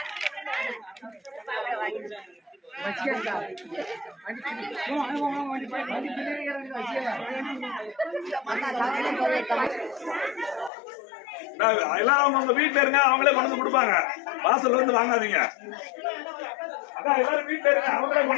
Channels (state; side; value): drops out; right; at 10.7 s